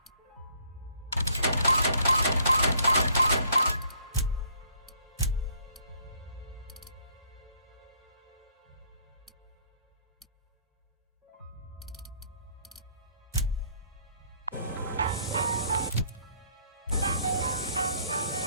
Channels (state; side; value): inverted; both; correlation -0.63